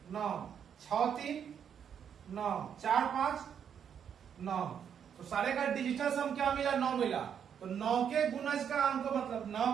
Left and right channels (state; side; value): quieter; left; 8.1 dB